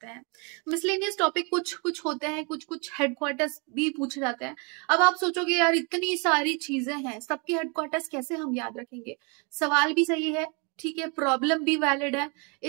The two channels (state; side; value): quieter; left; 33.5 dB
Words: हैं। मिसलेनियस टॉपिक कुछ कुछ होते हैं, कुछ कुछ हेडक्वार्टर्स भी पूछे जाते हैं। अब आप सोचोगे यार इतनी सारी चीजें हैं, सबके हेडक्वार्टर्स कैसे हम याद रखेंगे? सवाल भी सही है, ठीक है, प्रॉब्लम भी वैलिड है।